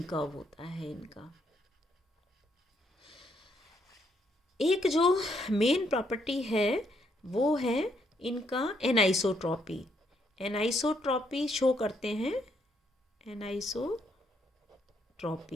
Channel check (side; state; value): both; normal; correlation 0.73